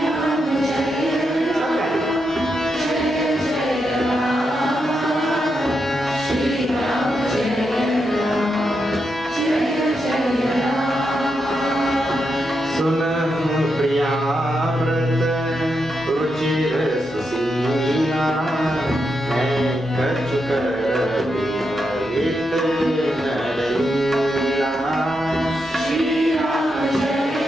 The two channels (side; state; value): both; normal; correlation 0.84